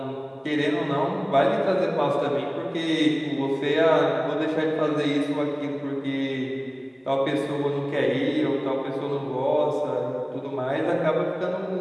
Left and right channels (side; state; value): both; identical; correlation 1.00